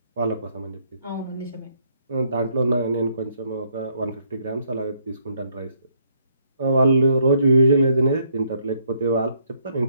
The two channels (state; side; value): inverted; both; correlation -0.70